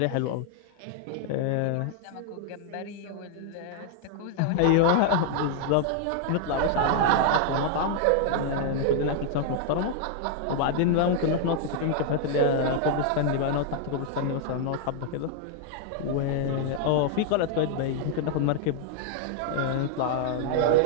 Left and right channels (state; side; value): different; both; correlation -0.01